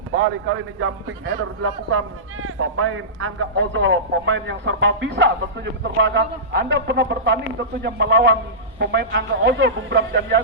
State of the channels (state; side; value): normal; both; correlation -0.18